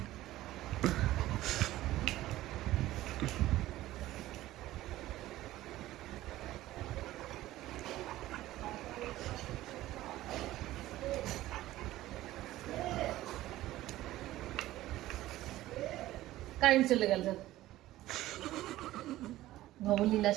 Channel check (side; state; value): left; quieter; 15.7 dB